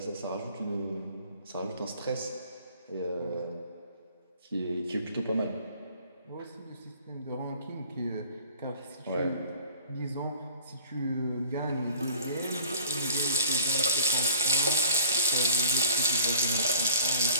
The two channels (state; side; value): inverted; both; correlation -0.48